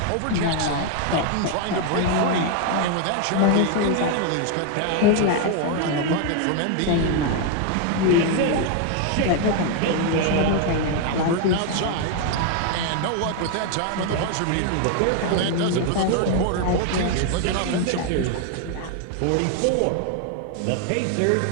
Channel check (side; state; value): both; different; correlation 0.01